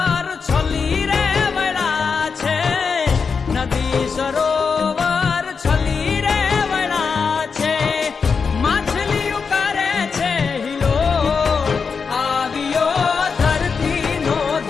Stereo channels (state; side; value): quieter; right; 5.5 dB